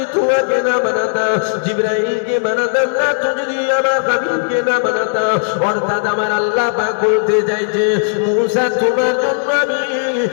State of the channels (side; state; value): right; silent; digital silence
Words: তোমাকে না বানাতাম, জিবরাইলকে বানাতাম না যদি আমার হাবিবকে না বানাতাম। অর্থাৎ আমার আল্লাহ পাক বলতে চাইছে, মুসা তোমার জন্য আমি